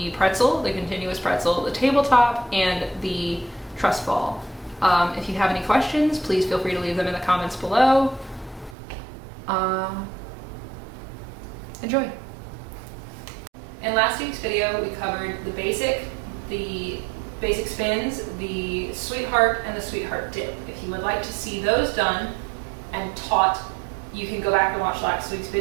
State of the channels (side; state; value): left; drops out; at 8.8 s